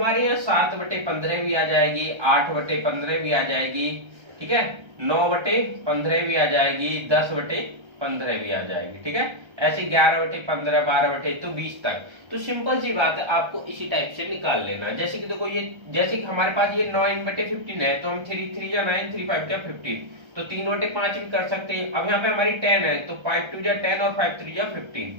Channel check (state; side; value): late; left; 1.3 ms